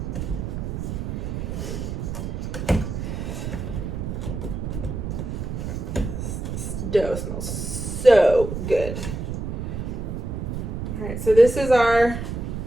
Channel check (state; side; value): noise; right; rumble, 4 dB below the sound